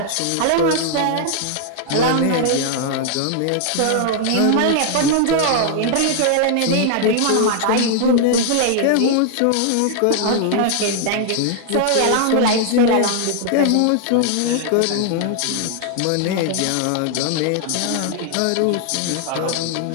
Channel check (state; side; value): different; both; correlation 0.00